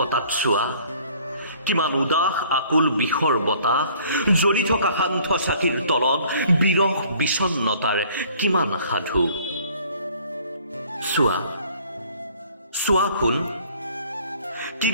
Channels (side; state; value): both; inverted; correlation -0.55